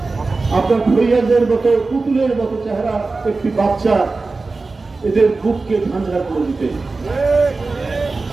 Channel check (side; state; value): left; quieter; 3.8 dB